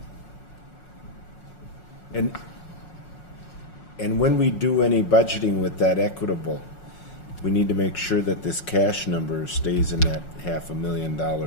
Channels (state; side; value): late; right; 5.5 ms